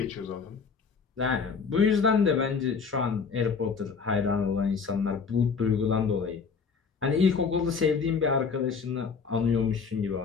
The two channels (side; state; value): right; quieter; 5.5 dB